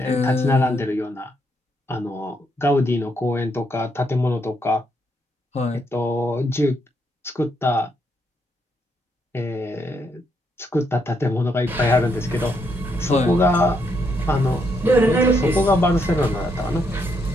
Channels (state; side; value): normal; both; correlation 0.76